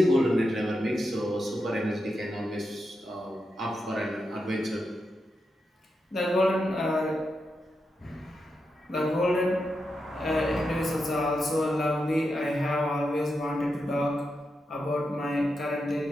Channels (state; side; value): normal; both; correlation 0.87